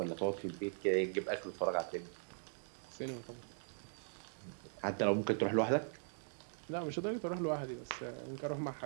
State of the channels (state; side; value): silent; left; digital silence